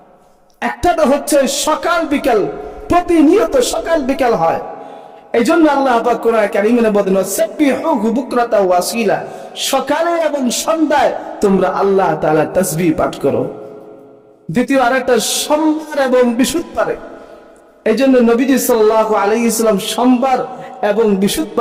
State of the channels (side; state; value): both; identical; correlation 1.00